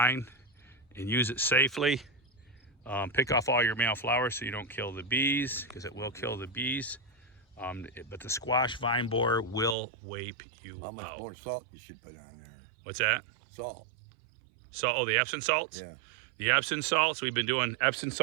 and use it safely. Pick off all your male flowers so you don't kill the bees, because it will kill the bees. But the squash vine borer will wipe you out. How much more salt you should put on there? What's that? Salt. Salt, oh, the Epsom salts? Yeah. The Epsom salts, we've been doing Epsom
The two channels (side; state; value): left; drops out; at 9.8 s